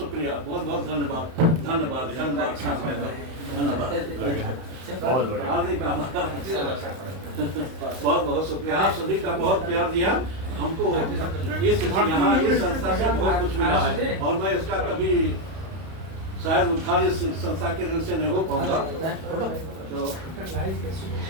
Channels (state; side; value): late; left; 31 ms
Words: बहुत बहुत धन्यवाद, धन्यवाद, धन्यवाद, धन्यवाद। बहुत बहुत शुक्रिया। आप सभी का बहुत प्यार दिया हमको। इस यहाँ इस संस्था से बहुत कुछ मिला है और मैं इसका कभी शायद उद्धार इस संस्था के दिन से नहीं हो पाऊंगा। तो